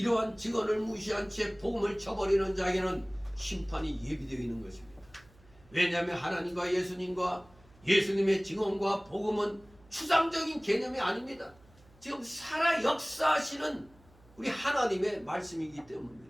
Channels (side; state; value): right; noise; hum, 28 dB below the sound